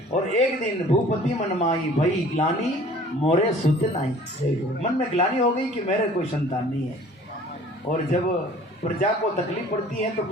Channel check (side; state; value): both; normal; correlation 0.50